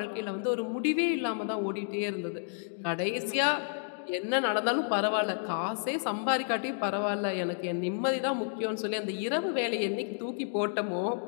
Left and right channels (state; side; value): silent; right; digital silence